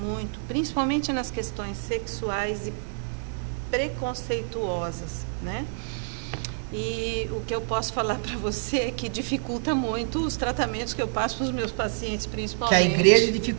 principalmente nas questões sexuais e preconceituosas, né? E o que eu posso falar para você é que dificulta muito os tratamentos que eu passo para os meus pacientes, principalmente. Que a igreja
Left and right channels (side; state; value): left; silent; digital silence